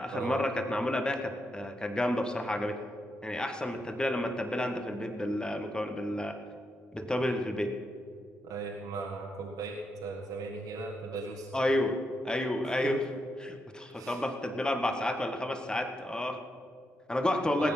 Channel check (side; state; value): both; normal; correlation 0.83